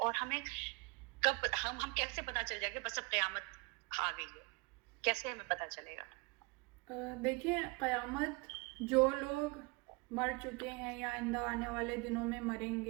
ہمیں کب ہم کیسے پتہ چل جائے گا بس اب قیامت آ گئی ہے، کیسے ہمیں پتہ چلے گا؟ دیکھیں، قیامت جو لوگ مر چکے ہیں یا آئندہ آنے والے دنوں میں مریں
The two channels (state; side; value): quieter; left; 28.2 dB